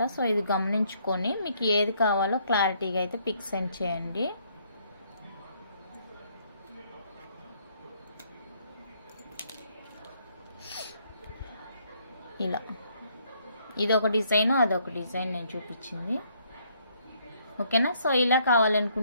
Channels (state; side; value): inverted; both; correlation -0.68